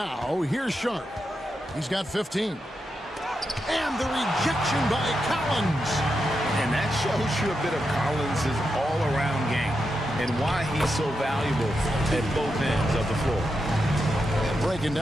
here's Sharp. He's got 15. And the rejection by Collins. And that shows you a bit of Collins' all-around game and why he's so valuable at both ends of the floor. And breaking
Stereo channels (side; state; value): both; normal; correlation 0.86